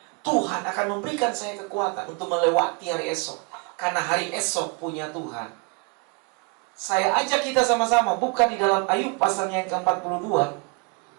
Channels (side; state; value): left; quieter; 32.4 dB